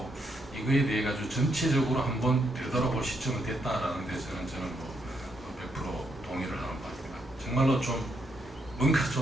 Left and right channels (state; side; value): normal; both; correlation 0.77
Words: 이거에 대해 가지고 전체적으로 한번 되돌아볼 시점이 됐다라는 데서는 저는 뭐 100% 동의를 하는 바입니다. 정말로 좀 뭔가